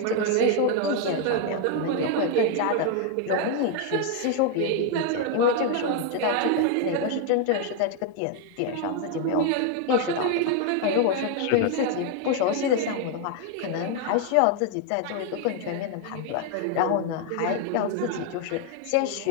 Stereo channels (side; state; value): both; different; correlation 0.00